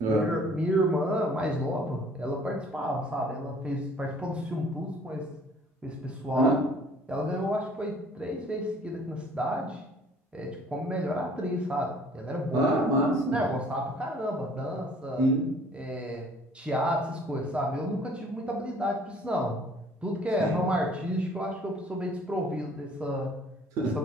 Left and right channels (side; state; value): both; normal; correlation 0.54